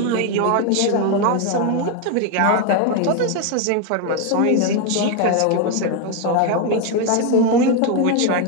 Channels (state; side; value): different; both; correlation 0.01